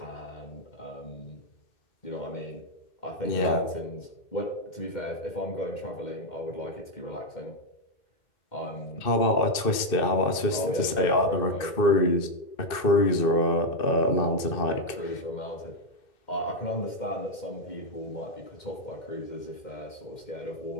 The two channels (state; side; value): late; right; 2.6 ms